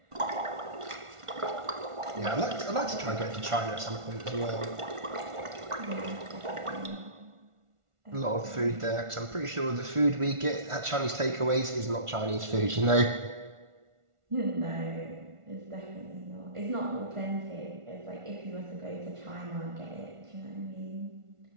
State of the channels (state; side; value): late; left; 1.4 ms